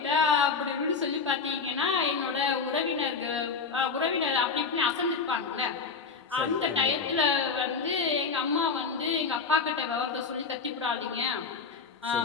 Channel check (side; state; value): right; quieter; 5.1 dB